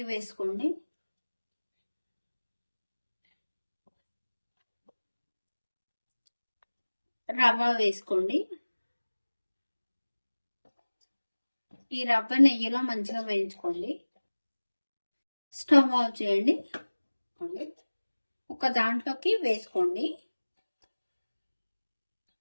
వేసుకోండి, రవ్వ వేసుకోండి. ఈ రవ్వ నెయ్యిలో మంచిగా వేయించుకోండి. స్టవ్ ఆఫ్ చేయండి. ఒక దాంట్లోకి వేసుకోండి,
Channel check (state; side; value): inverted; both; correlation -1.00